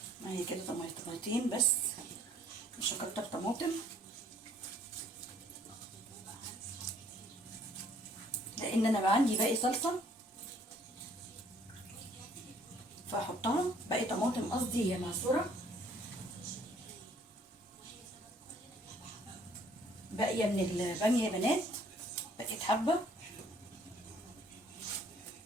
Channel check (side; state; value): both; normal; correlation 0.60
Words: هي كده طماطميتين بس، مش هكتر طماطم لان انا بقى عندي باقي صلصه فهحطها. باقي طماطم قصدي هي معصوره باقيه من الباميه يا بنات، بقيت حبه.